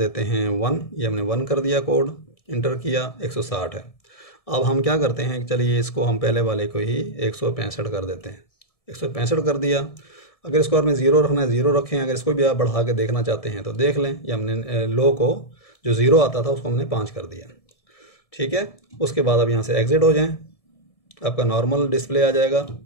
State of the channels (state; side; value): late; right; 1.7 ms